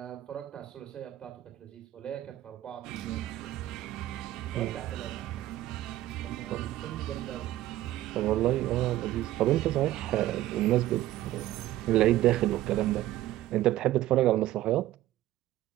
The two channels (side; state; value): left; quieter; 14.7 dB